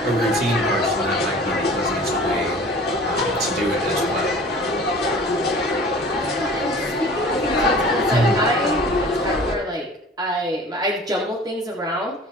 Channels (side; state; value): both; normal; correlation 0.44